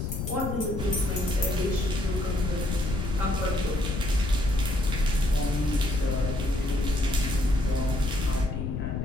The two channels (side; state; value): left; noise; rumble, 3 dB below the sound